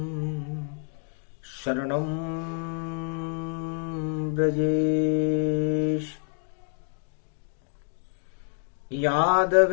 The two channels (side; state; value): right; silent; 58 dB below the other